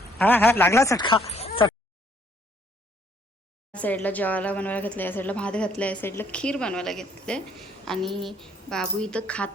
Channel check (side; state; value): both; normal; correlation 0.65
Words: हा लागला चटका. साईडला जेवायला बनवायला घेतलं, या साईडला भात घातला, या साईडला खीर बनवायला घेतले. आणि बाबू इथं